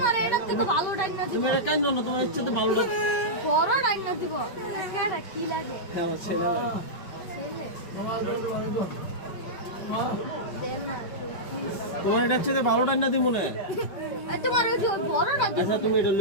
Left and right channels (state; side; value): late; right; 5.2 ms